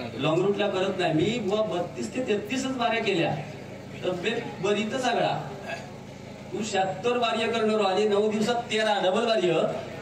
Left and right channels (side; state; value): both; identical; correlation 1.00